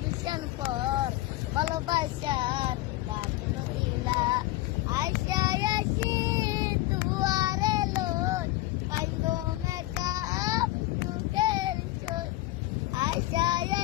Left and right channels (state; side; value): quieter; right; 17.3 dB